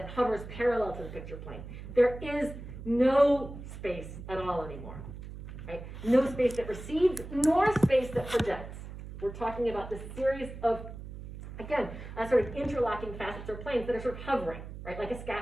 hovers parallel to the picture plane. There is no space at all anymore, right? No space that recedes, nor space that projects. We're talking about this series of Again, sort of interlocking facets or planes that are sort of hovering, right, like a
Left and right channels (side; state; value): right; noise; hum, 11 dB below the sound